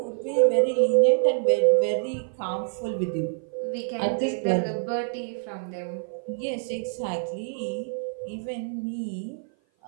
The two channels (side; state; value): left; silent; 55 dB below the other